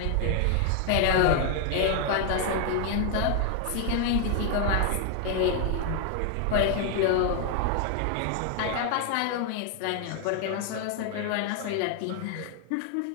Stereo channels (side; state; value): both; different; correlation 0.00